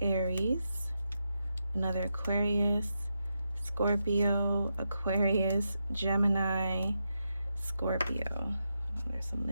another Aquarius, Scorpio, Aquarius, Gemini, Scorpio. There's some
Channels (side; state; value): both; inverted; correlation -0.86